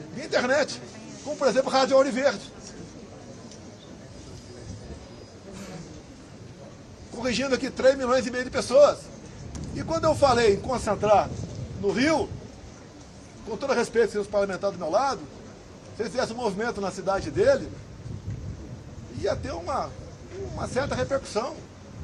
via internet. Como, por exemplo, a Rádio Ouro Verde. Corrigindo aqui 3 milhões e meio de pessoas. E quando eu falei em concentrar no Rio, com todo respeito aos parlamentares do meu lado, se ele fizesse um movimento na cidade dele, ia ter uma certa repercussão.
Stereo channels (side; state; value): both; identical; correlation 1.00